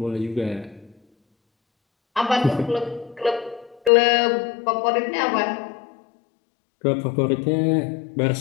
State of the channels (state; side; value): drops out; right; at 3.9 s